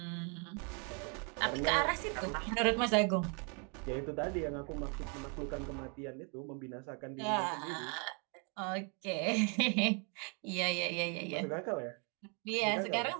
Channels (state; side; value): quieter; left; 36.4 dB